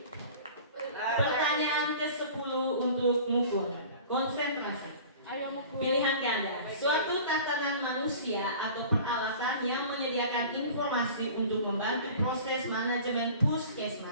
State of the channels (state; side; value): inverted; both; correlation -0.42